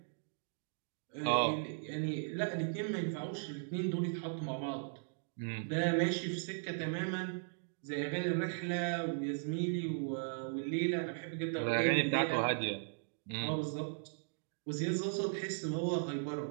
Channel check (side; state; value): left; silent; digital silence